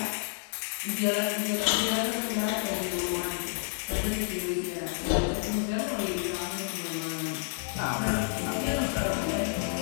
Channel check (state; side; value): silent; right; digital silence